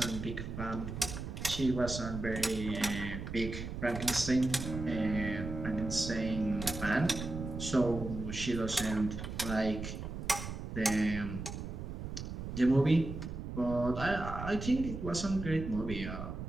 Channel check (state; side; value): noise; right; rumble, 7 dB below the sound